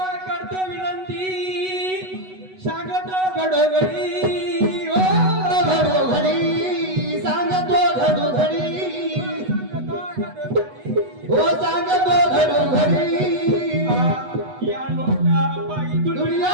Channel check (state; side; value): late; left; 8.1 ms